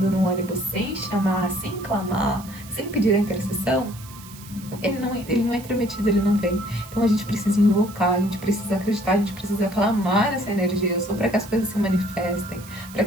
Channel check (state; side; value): noise; right; hiss, 18 dB below the sound